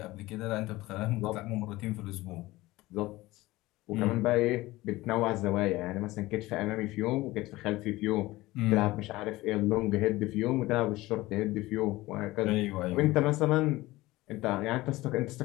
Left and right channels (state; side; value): quieter; right; 18.9 dB